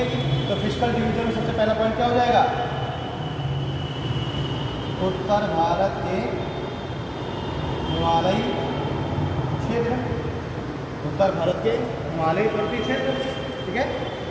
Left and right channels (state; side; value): identical; both; correlation 1.00